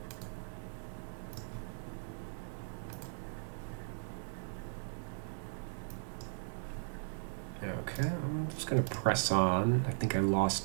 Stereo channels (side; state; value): left; silent; digital silence